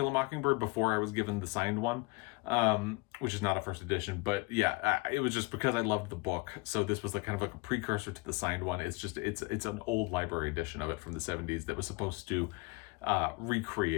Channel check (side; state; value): right; quieter; 25.5 dB